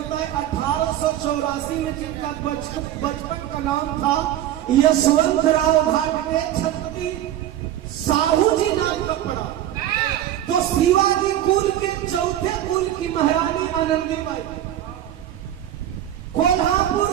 है। 1884 में जिनका बचपन का नाम था यशवंतराव घाटगे, छत्रपति साहू जी नाम का पड़ा। तो शिवाजी कुल के चौथे कुल की महारानी आनंदीबाई, कोल्हापुर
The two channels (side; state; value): left; quieter; 12.1 dB